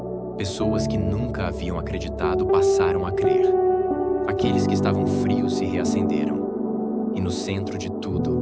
Pessoas que nunca haviam acreditado passaram a crer. Aqueles que estavam frios se reacenderam. E no centro de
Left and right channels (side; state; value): both; identical; correlation 1.00